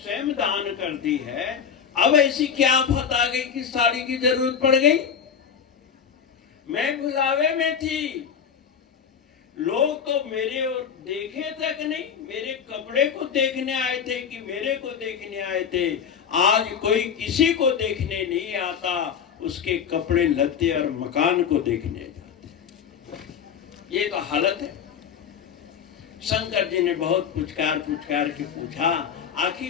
दान कर दी है, अब ऐसी क्या आफत आ गई कि साड़ी की जरूरत पड़ गई? मैं बुलावे में थी, लोग तो मेरे और देखे तक नहीं, मेरे कपड़े को देखने आए थे कि मेरे को देखने आए थे। आज कोई किसी को देखने नहीं आता, उसके कपड़े लत्ते और मकान को देखने जाते। ये तो हालत है। शंकर जी ने बहुत पुचकार के पूछा,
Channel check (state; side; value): quieter; right; 7.4 dB